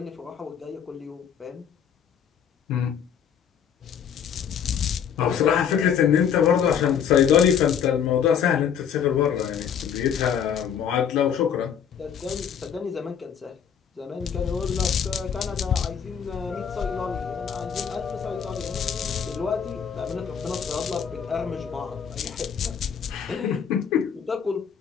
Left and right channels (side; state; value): right; quieter; 7.9 dB